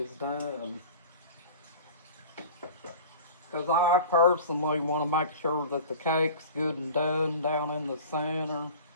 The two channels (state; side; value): inverted; both; correlation -0.39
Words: done. Because I personally want to make sure that the cake's good and done down in the center.